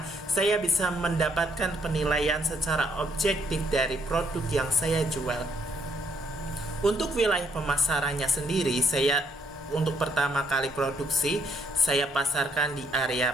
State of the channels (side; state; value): both; normal; correlation 0.70